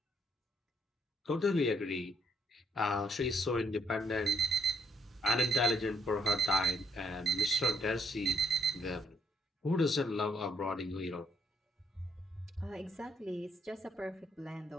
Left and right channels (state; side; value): normal; both; correlation 0.71